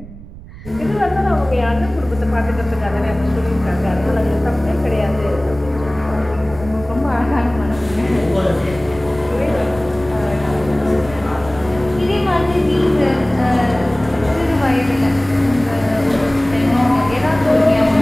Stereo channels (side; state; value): right; noise; rumble, 16 dB below the sound